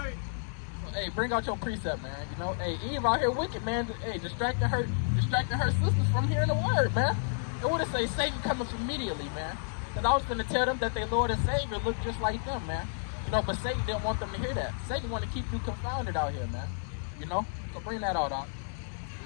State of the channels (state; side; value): silent; right; digital silence